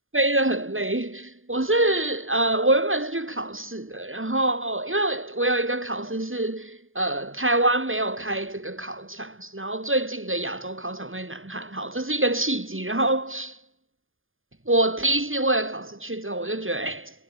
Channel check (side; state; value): left; late; 0.59 ms